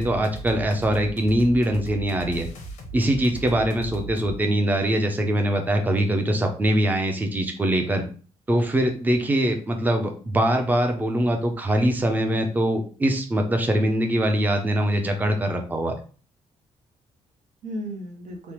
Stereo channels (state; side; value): normal; both; correlation 0.81